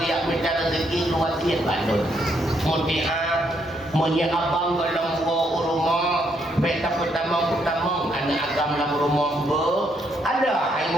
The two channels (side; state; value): both; normal; correlation 0.74